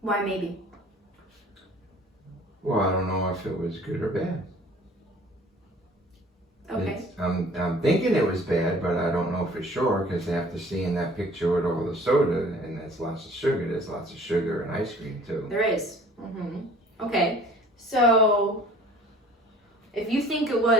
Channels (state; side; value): normal; both; correlation 0.50